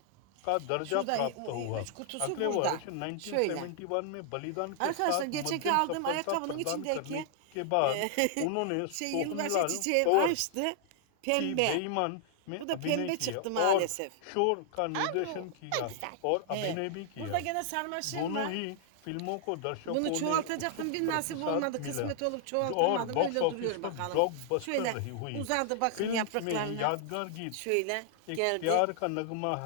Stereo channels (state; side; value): different; both; correlation -0.01